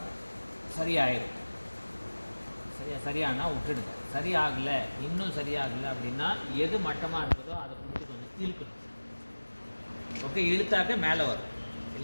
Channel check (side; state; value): both; inverted; correlation -1.00